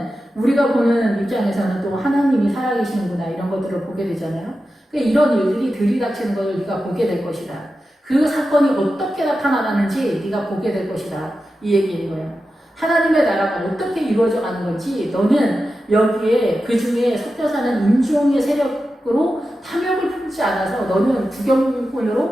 우리가 보는 입장에서는 또 하나님이 살아계시는구나 이런 것들을 보게 되잖아요. 그러니까 이런 일들이 들이닥치는 것을 네가 보게 될 것이다. 그 사건이 어떻게 나타나는지 네가 보게 될 것이다. 이 얘기인 거예요. 하나님의 나라가 어떻게 이루어져 가는 건지 너는 여기에 그 중에 섞여 사는 인종의 세력으로 탐욕을 품지 않아서 너는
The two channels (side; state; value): both; normal; correlation 0.91